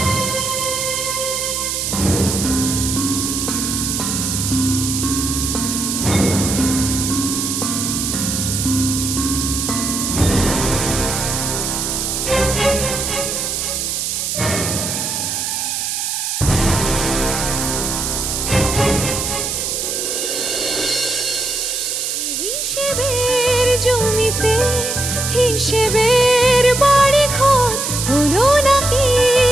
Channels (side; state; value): right; noise; hiss, 2 dB below the sound